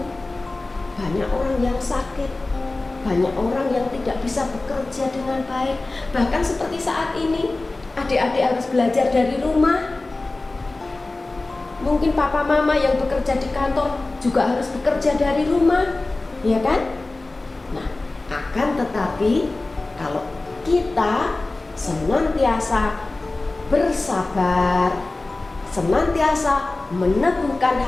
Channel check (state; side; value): quieter; right; 3.1 dB